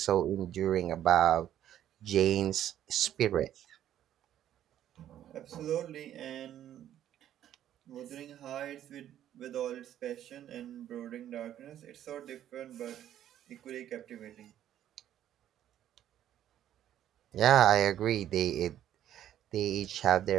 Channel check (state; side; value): quieter; left; 11.3 dB